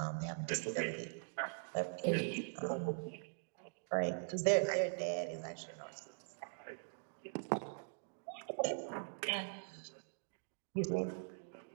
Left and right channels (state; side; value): silent; left; digital silence